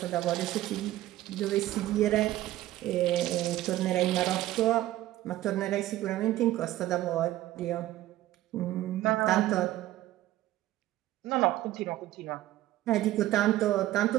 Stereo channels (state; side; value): quieter; left; 15.0 dB